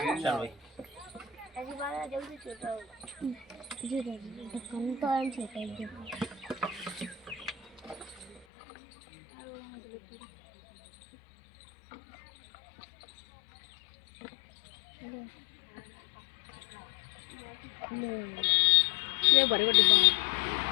भाई जल्दी छोटा जी ढक्कन तो एंड छोटा है। ले बड़े बड़े डिब्बा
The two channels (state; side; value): drops out; right; at 8.5 s